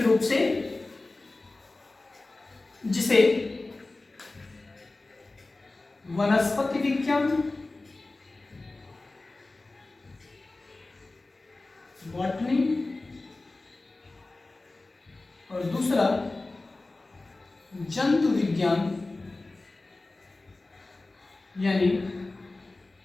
रूप से, जिसे वनस्पति विज्ञान, बॉटनी, और दूसरा जंतु विज्ञान यानी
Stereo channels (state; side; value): quieter; right; 3.2 dB